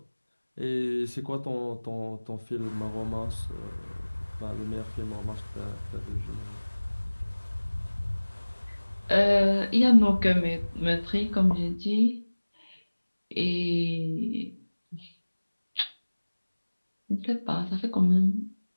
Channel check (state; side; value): inverted; both; correlation -1.00